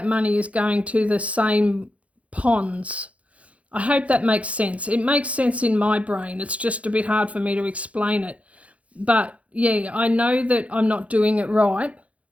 money is going to the same ponds. I hope that makes sense. It makes sense in my brain. It's just a bit hard for me to explain it. But yeah, I know that I'm not doing it right,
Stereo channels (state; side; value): late; left; 0.065 ms